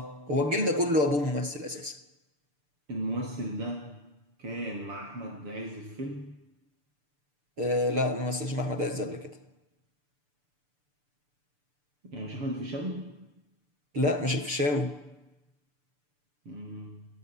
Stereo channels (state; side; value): late; left; 6.8 ms